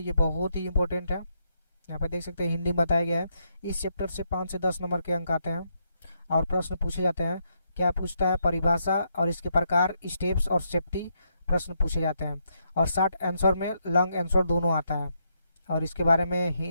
बहुत ही इंपॉर्टेंट है। यहाँ पे देख सकते हैं हिंदी में बताया गया है। इस चैप्टर से 5 से 10 नंबर के अंक आते हैं और प्रश्न पूछे जाते हैं। क्या पूछता है, परिभाषा और इसके प्रकार, स्टेप्स और सेफ्टी प्रश्न पूछे जाते हैं। और शॉर्ट आंसर में लॉन्ग आंसर दोनों आता है। और इसके बारे में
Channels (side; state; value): both; inverted; correlation -0.78